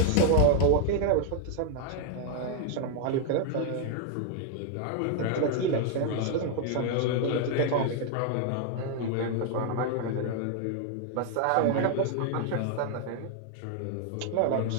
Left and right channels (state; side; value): different; both; correlation 0.00